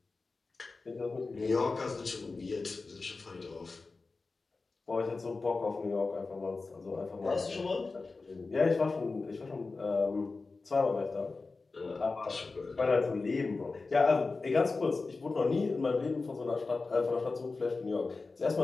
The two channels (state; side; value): quieter; right; 3.9 dB